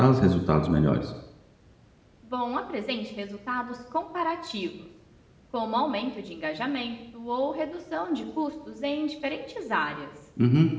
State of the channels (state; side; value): identical; both; correlation 1.00